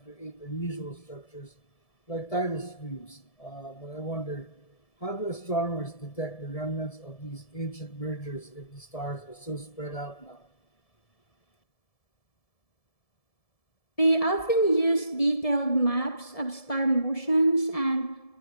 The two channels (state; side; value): late; right; 1.7 ms